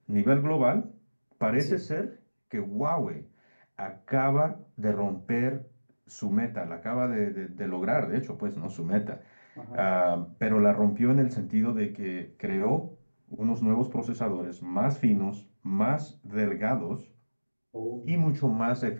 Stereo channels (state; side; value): inverted; both; correlation -1.00